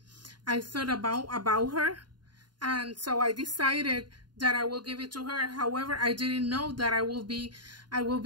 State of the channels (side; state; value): left; late; 0.71 ms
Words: I thought about her, and so I decided that I will give it to her. However, I didn't know that I will be